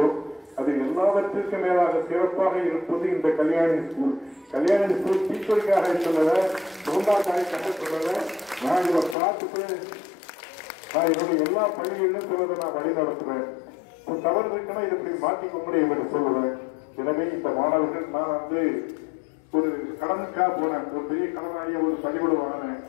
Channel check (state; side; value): drops out; right; at 9.2 s